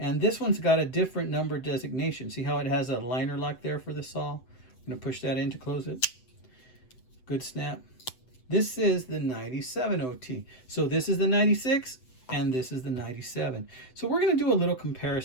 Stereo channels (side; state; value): right; late; 7.9 ms